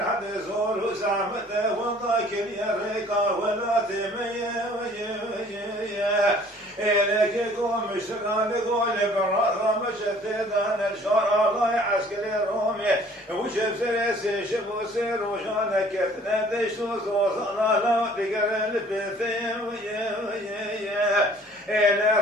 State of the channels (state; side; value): normal; both; correlation 0.54